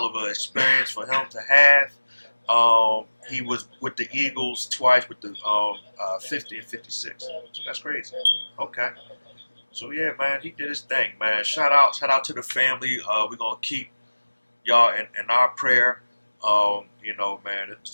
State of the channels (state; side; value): inverted; both; correlation -1.00